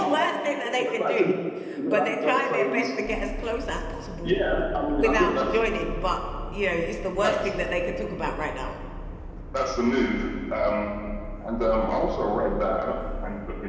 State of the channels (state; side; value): identical; both; correlation 1.00